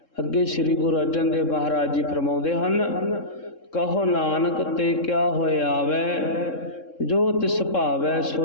ਅੱਗੇ ਸ੍ਰੀ ਗੁਰੂ ਅਰਜਨ ਦੇਵ ਮਹਾਰਾਜ ਜੀ ਫਰਮਾਉਂਦੇ ਹਨ, ਕਹੋ ਨਾਨਕ ਤੇ ਕਿਆ ਹੋਏ ਆਵੈ, ਜੋ ਤਿਸ ਭਾਵੈ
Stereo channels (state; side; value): late; right; 3.7 ms